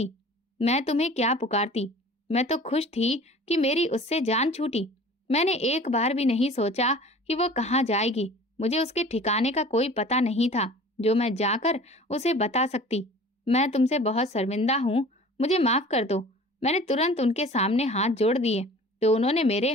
मैं तुम्हें क्या पुकारती? मैं तो खुश थी कि मेरी उससे जान छूटी। मैंने एक बार भी नहीं सोचा कि वो कहाँ जाएगी। मुझे उसके ठिकाने का कोई पता नहीं था जो मैं जाकर उसे बता सकती। मैं तुमसे बहुत शर्मिंदा हूँ, मुझे माफ कर दो। मैंने तुरंत उनके सामने हाथ जोड़ दिए तो उन्होंने मेरे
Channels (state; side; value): normal; both; correlation 0.44